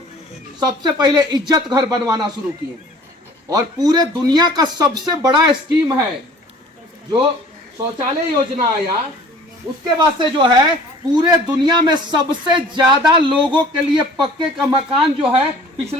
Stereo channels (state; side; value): normal; both; correlation 0.49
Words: सबसे पहले इज्जत घर बनवाना शुरू किए और पूरे दुनिया का सबसे बड़ा स्कीम है जो शौचालय योजना आया। उसके बाद से जो है पूरे दुनिया में सबसे ज्यादा लोगों के लिए पक्के का मकान जो है